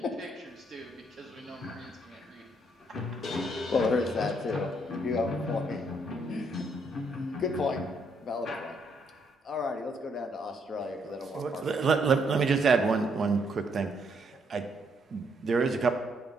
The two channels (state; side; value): normal; both; correlation 0.72